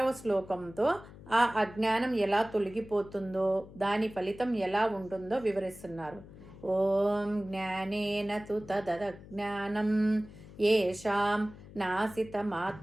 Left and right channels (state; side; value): noise; left; hum, 18 dB below the sound